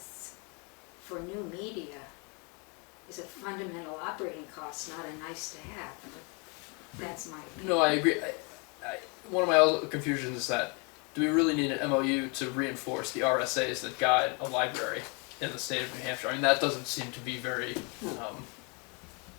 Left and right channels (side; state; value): right; quieter; 32.9 dB